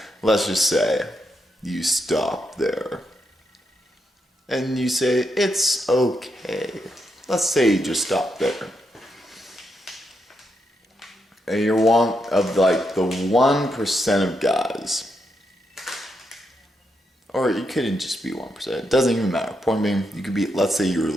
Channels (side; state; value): both; normal; correlation 0.82